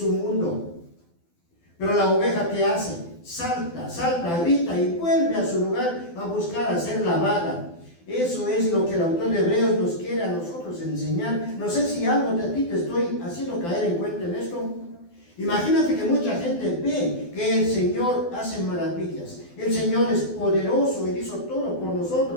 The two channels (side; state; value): right; late; 12 ms